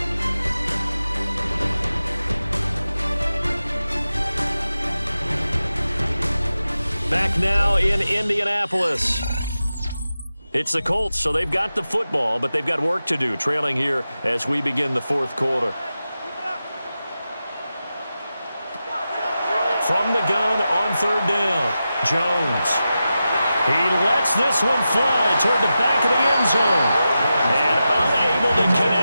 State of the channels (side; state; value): both; inverted; correlation -0.92